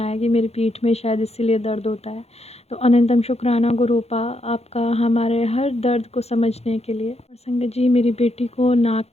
कि मेरी पीठ में शायद इसीलिए दर्द होता है। तो अनंतम शुक्राना गुरुपा आपका हमारे हर दर्द को समझने के लिए। और संगत जी मेरी बेटी को नाक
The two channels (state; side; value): late; right; 0.30 ms